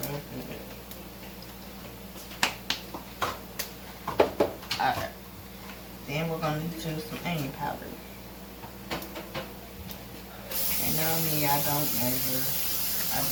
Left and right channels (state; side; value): identical; both; correlation 1.00